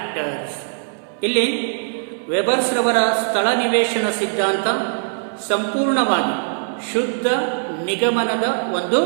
ಇಲ್ಲಿ ವೆಬರ್ಸ್ ರವರ ಸ್ಥಳ ನಿವೇಶನ ಸಿದ್ಧಾಂತ ಸಂಪೂರ್ಣವಾಗಿ ಶುದ್ಧ ನಿಗಮನದ ಒಂದು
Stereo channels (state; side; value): silent; left; 60 dB below the other